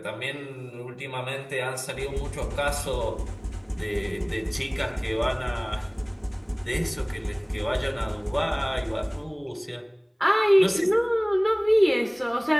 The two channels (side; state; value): both; identical; correlation 1.00